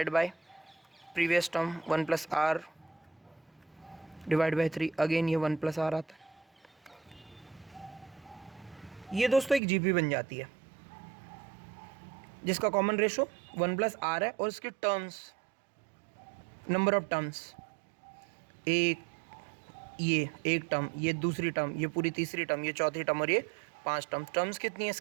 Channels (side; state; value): left; drops out; at 9.6 s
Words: by previous term 1 plus r divide by 3, again ये 1 प्लस आर आता है। ये दोस्तों एक जीपी बन जाती है जिसका कॉमन रेशो 1 प्लस आर है, और इसके टर्म्स, नंबर ऑफ टर्म्स, एक, ये एक टर्म, ये दूसरी टर्म, ये पूरी तीसरी टर्म, ये चौथी टर्म, और ये 5 टर्म। टर्म्स कितनी है